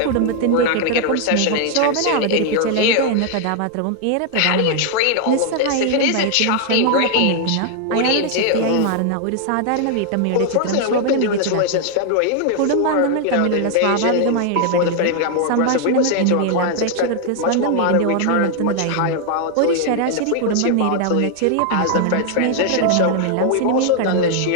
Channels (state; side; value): different; both; correlation 0.00